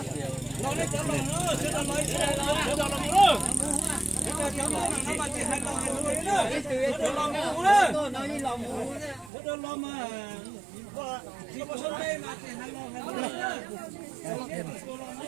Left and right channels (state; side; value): drops out; left; at 9.3 s